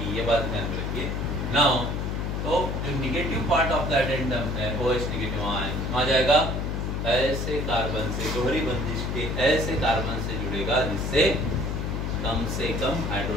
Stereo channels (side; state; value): left; noise; hum, 1 dB below the sound